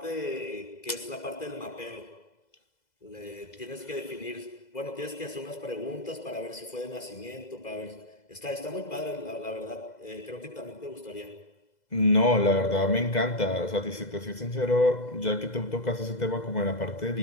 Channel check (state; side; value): late; right; 2.0 ms